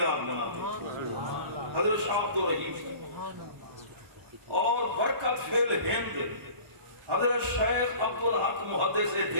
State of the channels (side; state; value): left; late; 1.1 ms